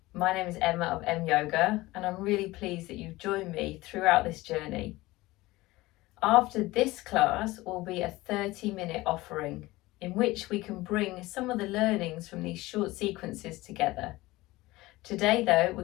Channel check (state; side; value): quieter; right; 19.3 dB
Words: My name is Emma of M Yoga, and I'm really pleased that you've joined me throughout this journey. After this class will be a 30-minute offering in which we can bring some of the learnings from these short sequences together. Today though, we're